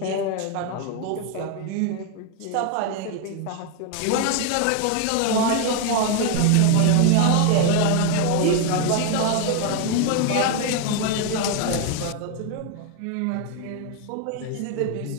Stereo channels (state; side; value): different; both; correlation 0.01